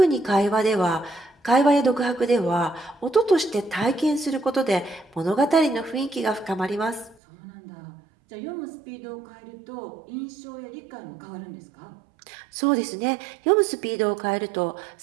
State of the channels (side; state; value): left; drops out; at 7.2 s